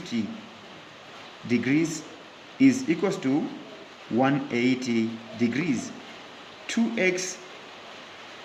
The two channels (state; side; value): identical; both; correlation 1.00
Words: degrees is equals to 180 degrees. 2x